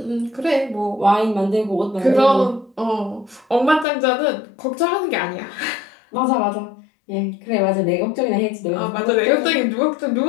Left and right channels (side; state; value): right; drops out; at 3.9 s